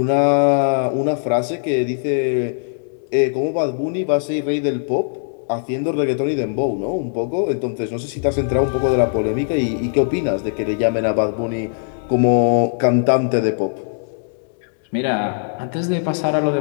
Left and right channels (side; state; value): right; silent; 66 dB below the other